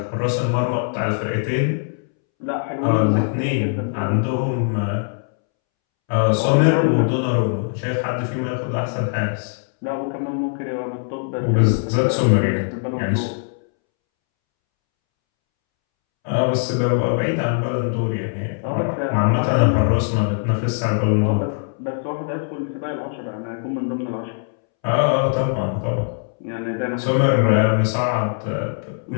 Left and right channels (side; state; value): right; silent; 65 dB below the other